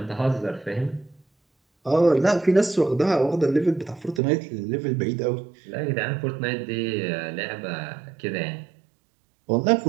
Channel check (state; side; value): drops out; left; at 4.2 s